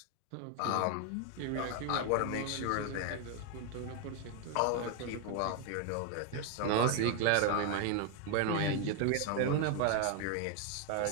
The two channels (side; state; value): both; different; correlation 0.01